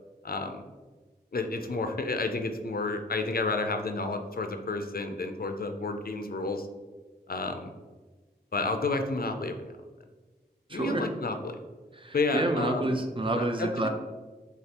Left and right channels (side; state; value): both; normal; correlation 0.44